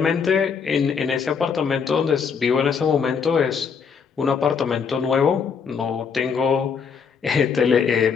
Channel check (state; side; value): quieter; right; 6.2 dB